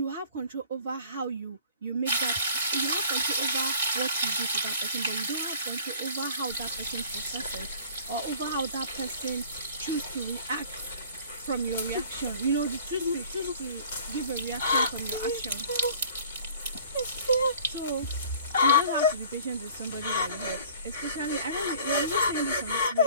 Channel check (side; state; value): both; inverted; correlation -0.49